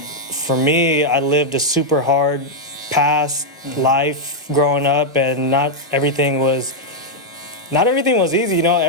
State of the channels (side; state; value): both; normal; correlation -0.02